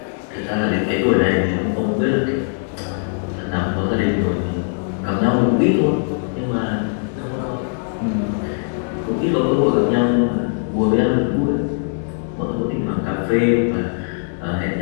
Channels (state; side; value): silent; right; digital silence